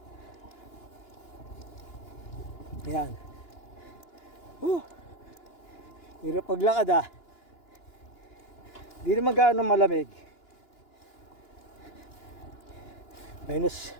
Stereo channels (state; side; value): late; right; 2.9 ms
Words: Ayan. Hirap paglakad . Di naman gaano malamig. Minus